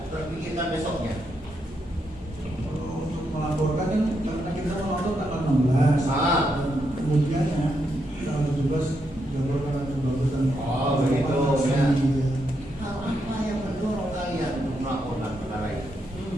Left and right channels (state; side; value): normal; both; correlation 0.81